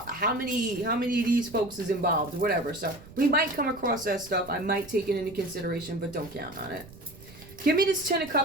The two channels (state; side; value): noise; right; rumble, 19 dB below the sound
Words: how many of these folks is involved or whatever. So we might come across that stuff. I might take it into consideration, but don't count on it. Give me this Ten of